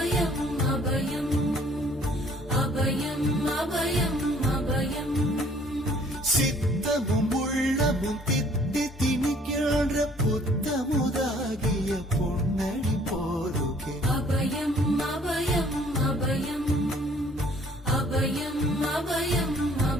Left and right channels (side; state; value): both; normal; correlation 0.58